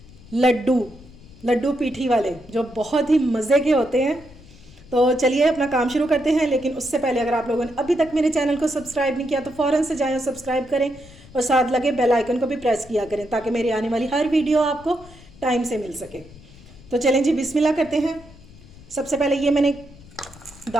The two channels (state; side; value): noise; left; rumble, 22 dB below the sound